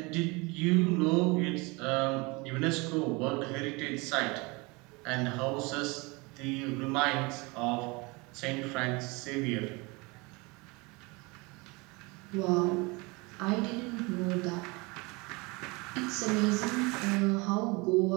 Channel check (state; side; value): quieter; left; 26.5 dB